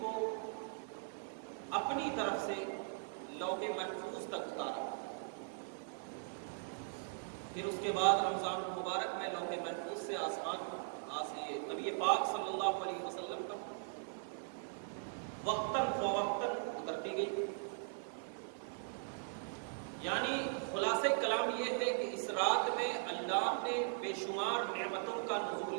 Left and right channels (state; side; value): silent; left; 51 dB below the other